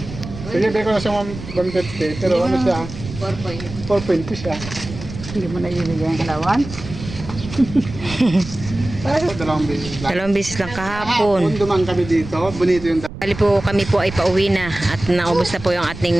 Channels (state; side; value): noise; right; rumble, 11 dB below the sound